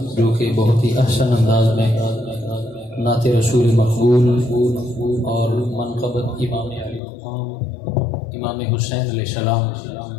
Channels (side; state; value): right; drops out; at 7.0 s